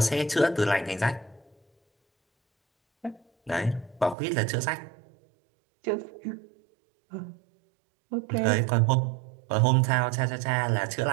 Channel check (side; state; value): left; drops out; at 4.2 s